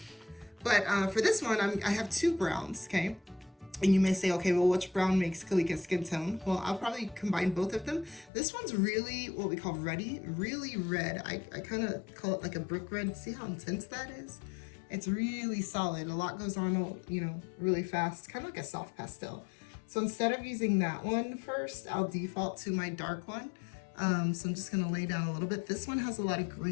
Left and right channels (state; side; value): drops out; right; at 8.3 s